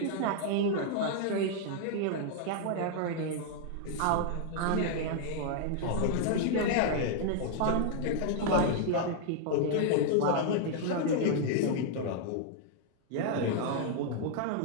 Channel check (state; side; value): different; both; correlation -0.01